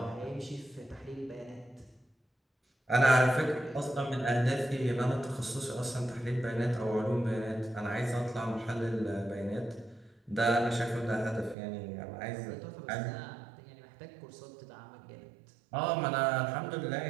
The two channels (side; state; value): left; drops out; at 11.6 s